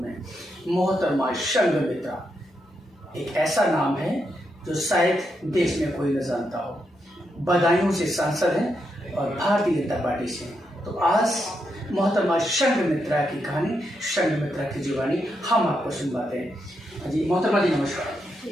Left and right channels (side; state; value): both; normal; correlation 0.82